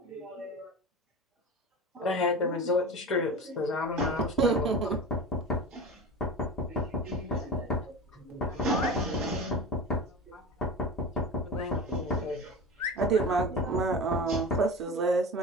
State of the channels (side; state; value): both; normal; correlation 0.30